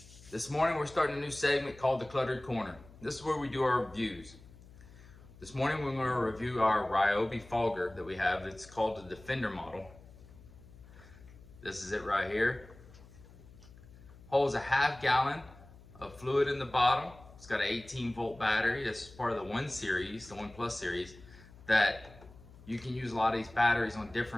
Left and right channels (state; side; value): noise; left; hum, 21 dB below the sound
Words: This morning we're starting a new segment called The Cluttered Corner. This is where we do our reviews. This morning we're going to review our Ryobi Fogger that we have. It's called the Defender model. This is it right here. Holds a half gallon of fluid in the bottom. It's got an 18-volt battery. It's part of the 1 series, the 1 Plus series, that you can use a lot of these batteries on